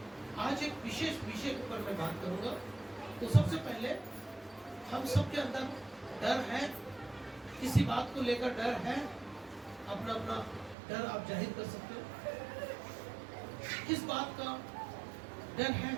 आज एक विशेष विषय के ऊपर मैं बात करूंगा। तो सबसे पहले हम सबके अंदर डर है, किसी बात को लेकर डर है, अपना अपना डर आप जाहिर कर सकते हो। किस बात का डर है?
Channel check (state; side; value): drops out; left; at 10.8 s